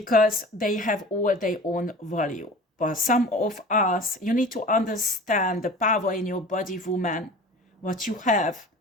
they have all their own value. But some of us, you need to understand the power in your body, woman, what you have,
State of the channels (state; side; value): normal; both; correlation 0.40